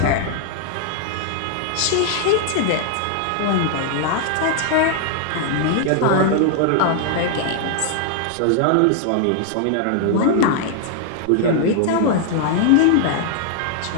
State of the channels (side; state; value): both; different; correlation -0.01